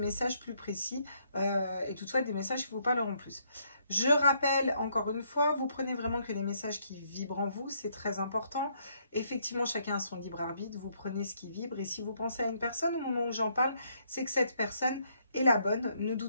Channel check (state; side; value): inverted; both; correlation -0.72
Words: plus précis et toutefois des messages qui vous parleront plus. Je rappelle encore une fois, vous prenez vraiment que les messages qui vibrent en vous, c'est très important. Effectivement, chacun a son libre arbitre, vous prenez ce qui vibre et si vous pensez à une personne au moment où j'en parle, c'est que cette personne est la bonne. Ne